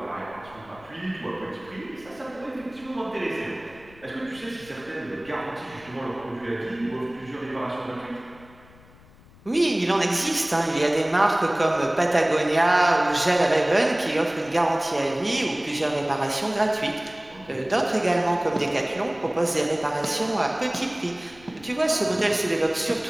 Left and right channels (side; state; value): left; noise; rumble, 24 dB below the sound